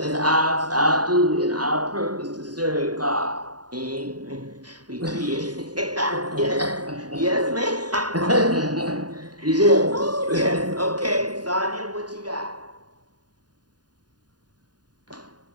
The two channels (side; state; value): left; late; 0.69 ms